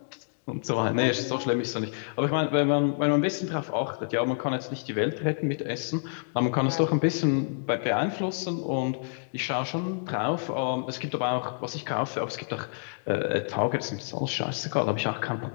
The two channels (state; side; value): silent; right; digital silence